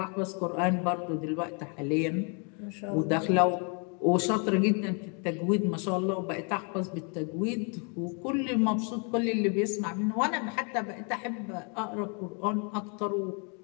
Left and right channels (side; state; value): right; quieter; 37.1 dB